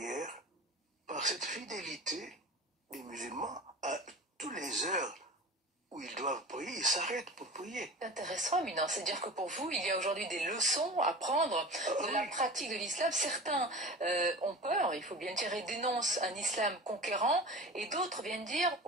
par cette fidélité des musulmans, à toutes les heures où ils doivent prier, ils s'arrêtent pour prier. C'est intéressant, Éminent. C'est-à-dire que pour vous, il y a aujourd'hui des leçons à prendre de la pratique de l'islam. Certains ont peur, il faut bien dire, et dénoncent un islam conquérant, et d'autres viennent dire,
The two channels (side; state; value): both; normal; correlation 0.34